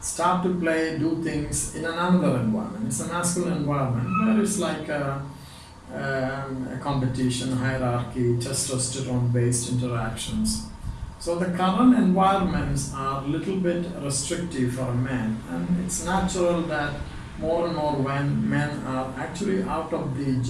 to do things in another environment, it's a masculine environment where it's like a competition, hierarchy, testosterone-based interactions. So the current environments are a little bit restrictive for a man, and it's natural that more and more when men are actually out of the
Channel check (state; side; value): identical; both; correlation 1.00